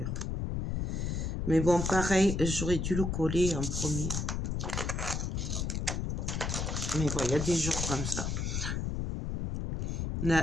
Mais bon, pareil, j'aurais dû le coller en premier. Mais bon, il y a des jours comme ça.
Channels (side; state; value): left; noise; rumble, 1 dB below the sound